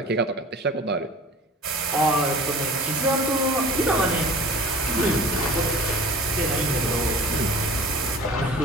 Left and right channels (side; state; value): both; normal; correlation 0.42